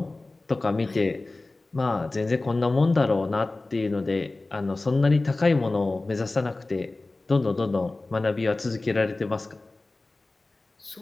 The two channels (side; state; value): right; quieter; 3.1 dB